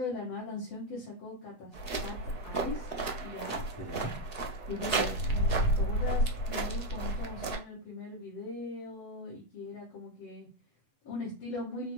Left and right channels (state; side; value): late; right; 8.0 ms